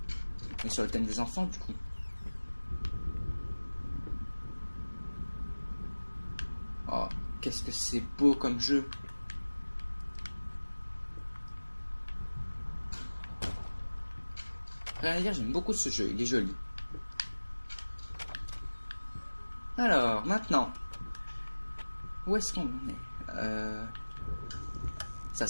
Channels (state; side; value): inverted; both; correlation -1.00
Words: Mais sur le thème des enfants, du coup. Oh, qu'est-ce que c'est beau comme jeu. Rien à dire, j'aime beaucoup ce jeu, il est joli. Alors, maintenant. Où est-ce qu'on est? Ça